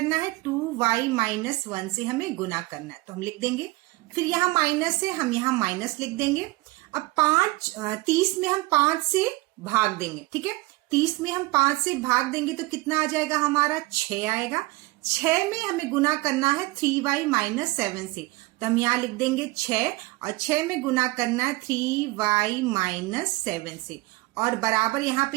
है, 2y - 1 से हमें गुना करना है, तो हम लिख देंगे। फिर यहाँ माइनस है, हम यहाँ माइनस लिख देंगे। अब 30 में हम 5 से भाग देंगे। ठीक है, 30 में हम 5 से भाग देंगे तो कितना आ जाएगा हमारा, 6 आएगा। 6 में हमें गुना करना है 3y - 7 से, तो हम यहाँ लिख देंगे 6 और 6 में गुना करना है 3y - 7 से और बराबर यहाँ पे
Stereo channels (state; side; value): quieter; left; 21.4 dB